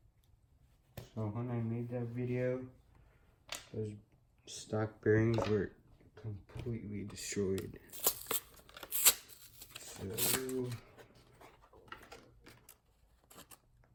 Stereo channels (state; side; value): identical; both; correlation 1.00